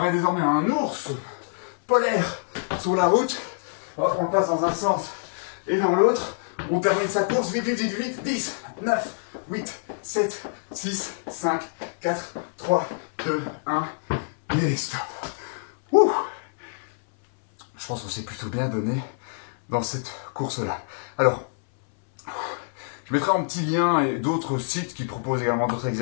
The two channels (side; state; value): right; silent; 59 dB below the other